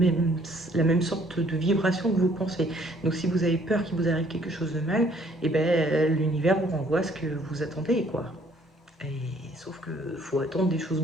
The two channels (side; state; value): both; normal; correlation 0.61